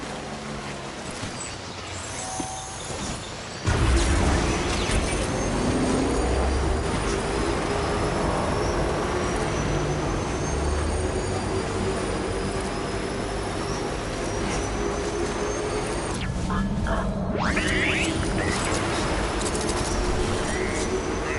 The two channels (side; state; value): both; identical; correlation 1.00